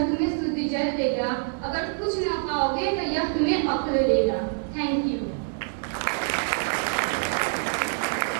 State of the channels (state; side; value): silent; left; digital silence